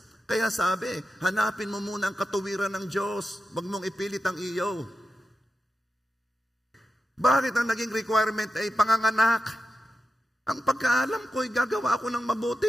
Kaya sabi, hanapin mo muna ang katuwiran ng Diyos. Huwag mong ipilit ang iyo. Bakit ang naging requirement ay panganganak? Ang pagkaalam ko'y gagawa ako ng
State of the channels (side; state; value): both; normal; correlation 0.90